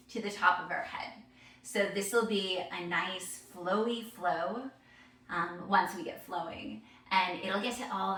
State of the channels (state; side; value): identical; both; correlation 1.00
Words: to the top of our head. So this will be a nice flowy flow once we get flowing, and it'll get to all